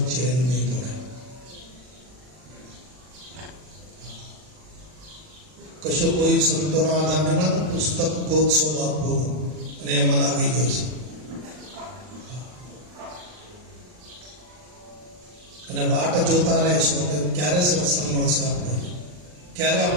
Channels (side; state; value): left; late; 39 ms